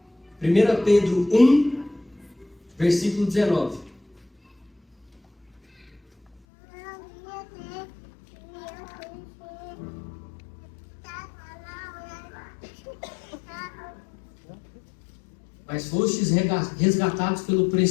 1 Pedro 1, versículo 19. mas fostes resgatados pelo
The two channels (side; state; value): right; drops out; at 6.4 s